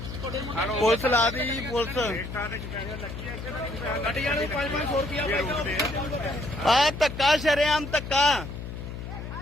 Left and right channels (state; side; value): noise; left; hum, 8 dB below the sound